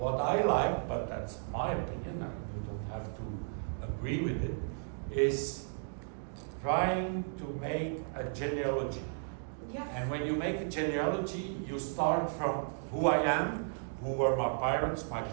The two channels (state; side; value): silent; left; digital silence